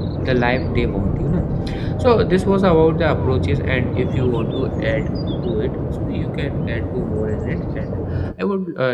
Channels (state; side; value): identical; both; correlation 1.00